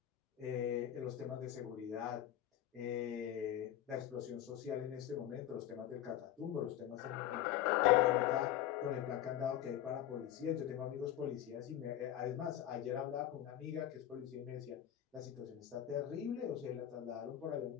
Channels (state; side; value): quieter; right; 11.8 dB